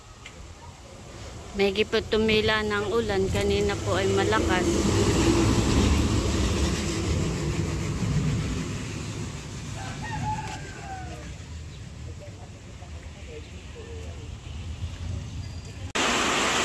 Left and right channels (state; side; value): identical; both; correlation 1.00